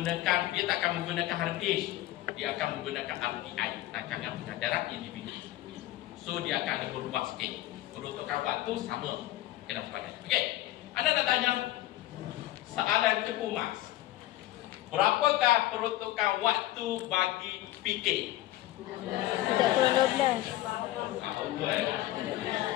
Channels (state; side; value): quieter; right; 15.9 dB